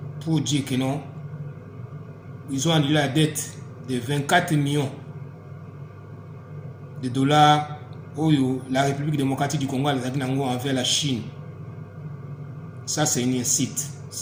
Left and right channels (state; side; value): identical; both; correlation 1.00